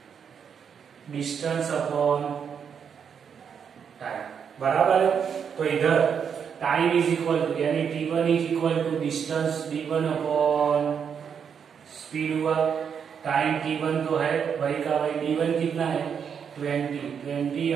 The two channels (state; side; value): quieter; left; 7.2 dB